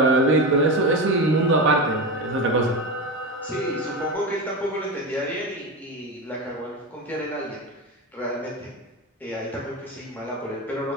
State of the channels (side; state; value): both; normal; correlation 0.20